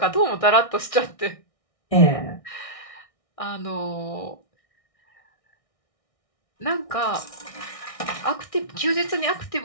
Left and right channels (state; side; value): late; right; 1.6 ms